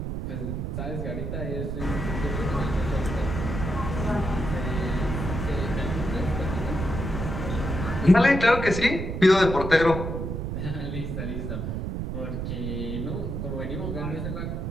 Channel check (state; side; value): noise; right; rumble, 3 dB below the sound